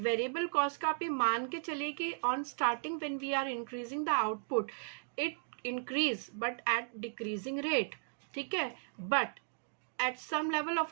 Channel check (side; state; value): left; silent; digital silence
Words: कॉस्ट का आप ये मान के चलिए कि on starting when we are increasing the output it increase but at decreasing rate, ठीक है। But at some level